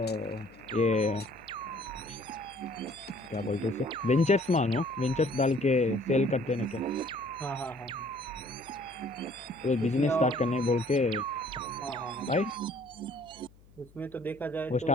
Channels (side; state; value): left; noise; hum, 26 dB below the sound